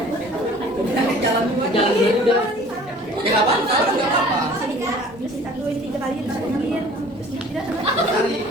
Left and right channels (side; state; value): both; normal; correlation 0.49